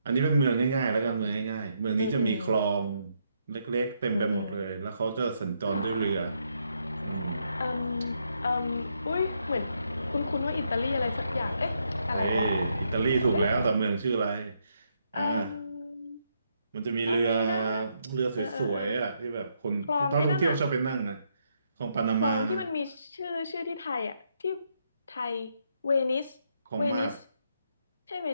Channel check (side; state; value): both; inverted; correlation -0.77